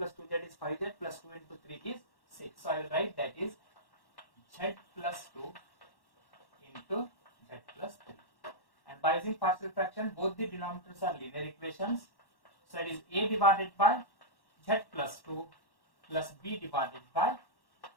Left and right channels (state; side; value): late; right; 1.1 ms